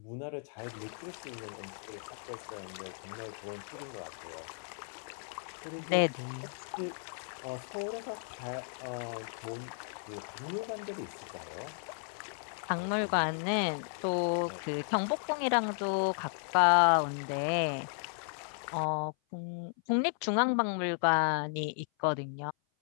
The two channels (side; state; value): right; silent; 55 dB below the other